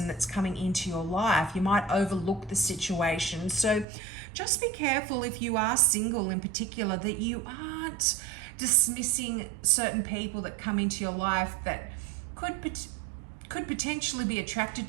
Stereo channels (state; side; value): drops out; left; at 3.9 s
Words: that's coming into your life. You might overlook the situation. So just be careful, if you are single in particular, that you aren't dismissing certain people that come into your life that could potentially be attracted